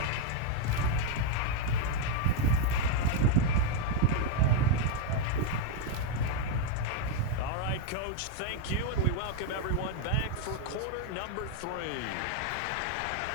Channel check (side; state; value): both; different; correlation 0.01